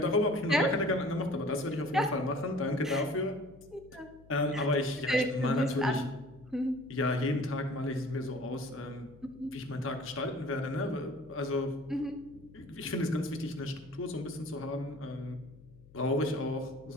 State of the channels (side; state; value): left; noise; hum, 23 dB below the sound